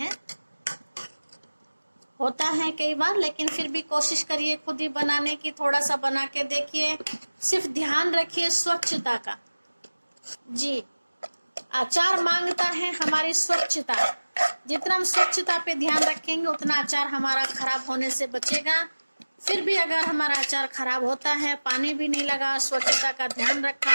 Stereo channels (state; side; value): inverted; both; correlation -1.00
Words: होता है कई बार, लेकिन फिर भी कोशिश करिए खुद ही बनाने की। थोड़ा सा बना के देखिए, सिर्फ ध्यान रखिए स्वच्छता का। जी अचार मांगता है हमारी स्वच्छता। जितना हम स्वच्छता पे ध्यान रखेंगे उतना अचार हमारा खराब होने से बचेगा। फिर भी अगर हमारा अचार खराब होता है, पानी भी नहीं लगा, स्वच्छता का ध्यान